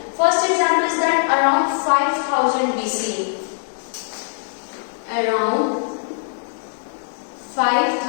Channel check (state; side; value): silent; right; 57 dB below the other